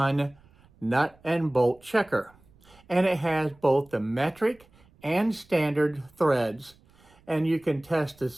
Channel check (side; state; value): right; noise; rumble, 29 dB below the sound